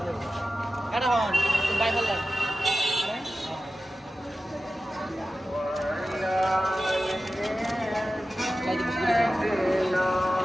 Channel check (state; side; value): normal; both; correlation 0.94